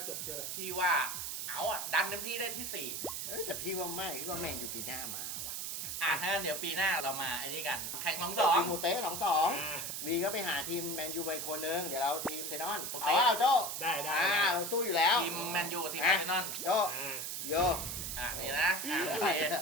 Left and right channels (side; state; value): right; noise; hiss, 4 dB below the sound